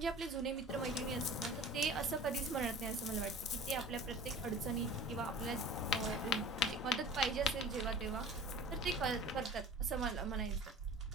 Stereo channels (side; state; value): both; normal; correlation 0.41